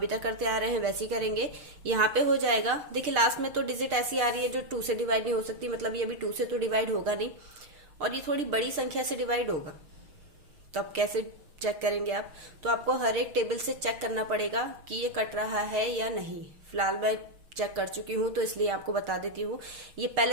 तक करते आ रहे हैं वैसे ही करेंगे। यहाँ पे हो जाएगा, देखिए लास्ट में तो डिजिट ऐसी आ रही है जो 2 से डिवाइड नहीं हो सकती, मतलब ये अभी 2 से तो डिवाइड होगा नहीं और ये थोड़ी बड़ी संख्या से डिवाइड होगा। तो अब कैसे चेक करेंगे आप, तो आपको हर एक टेबल से चेक करना पड़ेगा कि ये कट रहा है या नहीं। फिलहाल मैं चेक कर चुकी हूँ तो इसलिए आपको बता देती हूँ। ये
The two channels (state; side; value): late; left; 6.5 ms